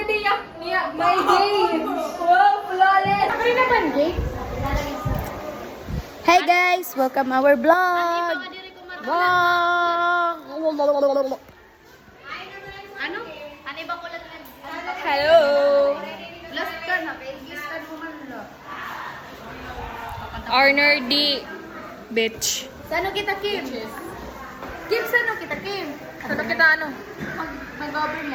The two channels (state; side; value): identical; both; correlation 1.00